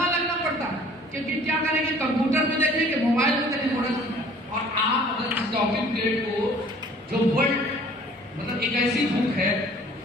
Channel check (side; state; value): both; normal; correlation 0.52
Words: लगना पड़ता है, क्योंकि क्या करेंगे, कंप्यूटर में देखेंगे, मोबाइल में देखेंगे, मोटा चश्मा। और आप अगर इस टॉकिंग ट्रेड को, जो वर्ल्ड मतलब एक ऐसी बुक है